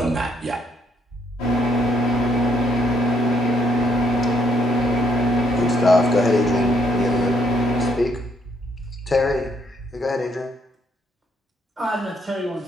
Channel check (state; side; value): normal; both; correlation 0.72